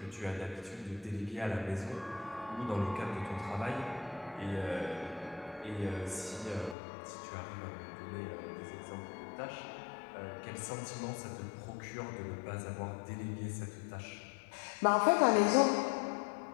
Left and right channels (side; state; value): right; drops out; at 6.8 s